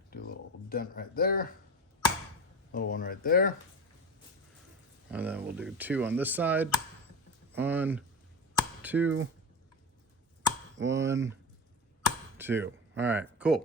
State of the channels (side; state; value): both; normal; correlation 0.24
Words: do a little dent right there, little one right there, and then we'll do two on this side. 1, 2, 1, 2. All right,